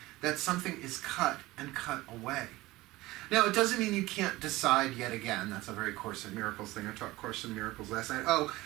That something is cut and cut away. Now, it doesn't mean you can't decide yet again. That's a very Course in Miracles thing. I taught Course in Miracles last night.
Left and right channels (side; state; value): left; quieter; 19.0 dB